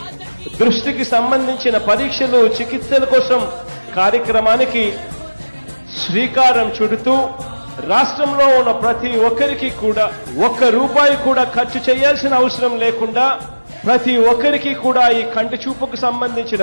దృష్టికి సంబంధించిన పరీక్షలు చికిత్సల కోసం కార్యక్రమానికి శ్రీకారం చుడుతూ రాష్ట్రంలో ఉన్న ప్రతి ఒక్కరికి కూడా ₹1 కూడా ఖర్చు చేయాల్సిన అవసరం లేకుండా ప్రతి ఒక్కరికి కూడా ఈ కంటి చూపుకు సంబంధించిన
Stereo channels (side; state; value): both; inverted; correlation -1.00